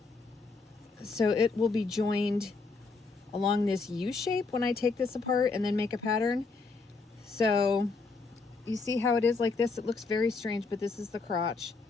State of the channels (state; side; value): quieter; right; 4.2 dB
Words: it will be joined along this U shape when I take this apart and then make a pattern. So you see how it is like this? It looks very strange, but this is the crotch.